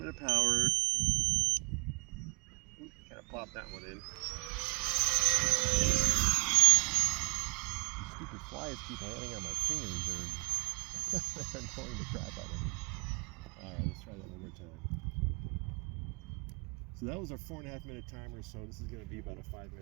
bit of power. Kind of plop that one in. Stupid flies keep landing on my fingers. They're annoying the crap out of me. Alright, let's try that one more time. So that was our 4.5 minute timer, so this is going to be about a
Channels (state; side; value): quieter; left; 29.4 dB